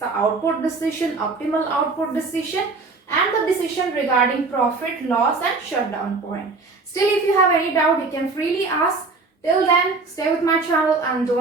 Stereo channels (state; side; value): quieter; left; 3.9 dB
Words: output decision, optimal output decision and the decision regarding profit, loss and shutdown point. Still, if you have any doubt, you can freely ask. Till then, stay with my channel and